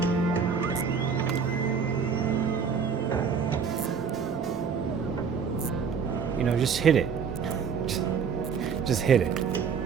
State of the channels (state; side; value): quieter; left; 6.2 dB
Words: You know, just hit it. Just hit it.